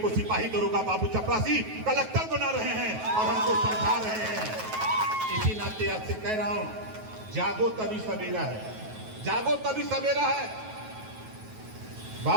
सिपाही, दरोगा, बाबू, चपरासी, कलेक्टर बना रहे हैं और हमको समझा रहे हैं। इसी नाते आपसे कह रहा हूं, जागो तभी सवेरा है, जागो तभी सवेरा है।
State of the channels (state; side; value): late; left; 9.3 ms